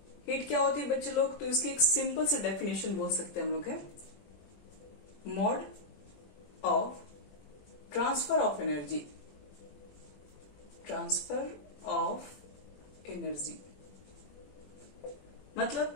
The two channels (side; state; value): right; late; 21 ms